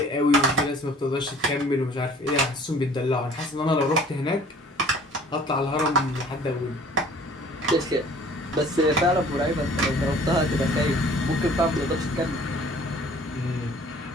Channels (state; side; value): normal; both; correlation 0.51